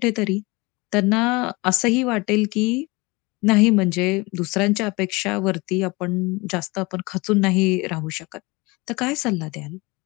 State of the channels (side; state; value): right; quieter; 24.6 dB